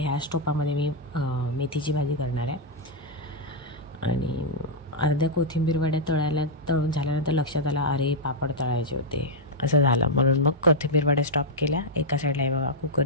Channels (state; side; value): normal; both; correlation -0.05